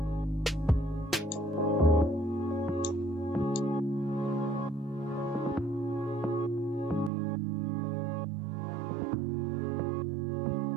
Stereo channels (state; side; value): drops out; left; at 7.1 s